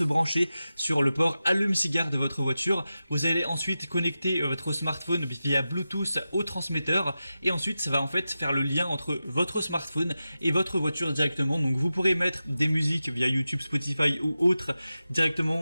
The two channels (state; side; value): inverted; both; correlation -0.93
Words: brancher sur le port allume-cigare de votre voiture. Vous allez ensuite connecter votre smartphone via Bluetooth au transmetteur et ensuite, ça va en fait faire le lien entre votre smartphone et votre voiture directement. Donc, vous pourrez mettre des musiques via YouTube, Spotify ou autres